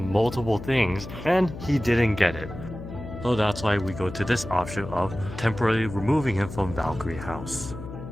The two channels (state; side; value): noise; left; hum, 11 dB below the sound